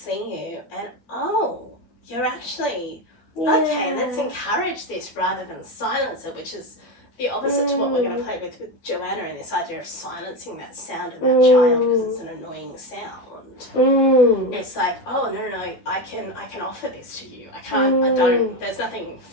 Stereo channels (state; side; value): late; right; 12 ms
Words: you. And, oh, you're actually... Okay, let's encourage this rather than silence it, which is the opposite to what we're going to play with Joanna, and this idea of silencing that sound in that child because it's an annoying sound. It's like, oh, no, I can offer this to you. I don't, there's nothing